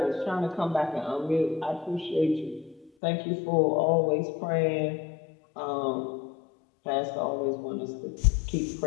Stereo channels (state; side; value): drops out; right; at 2.9 s